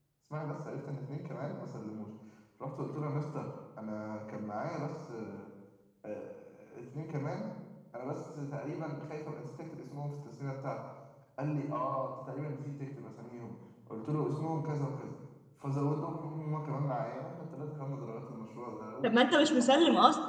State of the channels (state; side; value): identical; both; correlation 1.00